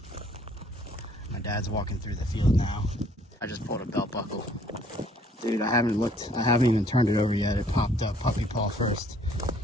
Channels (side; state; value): both; normal; correlation 0.61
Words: My dad's walking through the field now. I just pulled a belt buckle. Dude, I haven't even turned it over yet. It popped up puppy paw first.